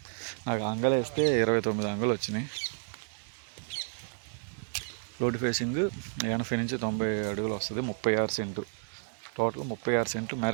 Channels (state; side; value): silent; left; 57 dB below the other